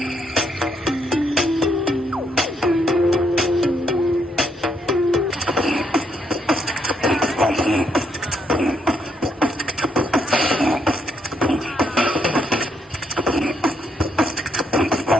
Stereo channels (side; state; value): both; normal; correlation 0.74